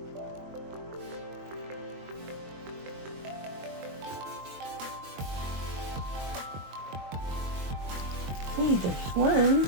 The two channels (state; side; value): late; left; 22 ms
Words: See, there's one.